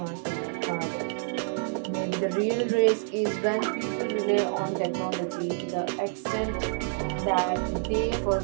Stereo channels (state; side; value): silent; left; 59 dB below the other